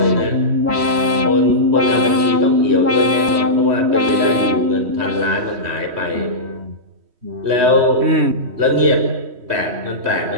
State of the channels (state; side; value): late; left; 3.1 ms